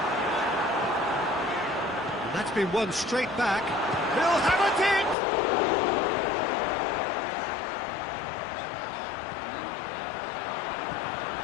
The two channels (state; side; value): drops out; right; at 5.2 s